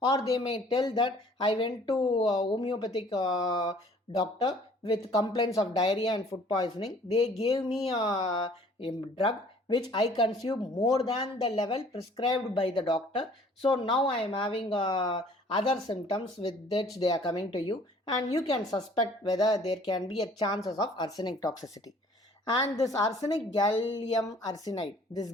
or they may tell that I went to homeopathic doctor with complaints of diarrhea and food poisoning. They gave me a drug which I consume more than the level prescribed by the doctor. So now I am having other symptoms with which they are coming to you, and you can suspect whether there can be a chances of arsenic toxicity. And this arsenic gallium arsenide, this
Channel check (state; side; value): normal; both; correlation 0.54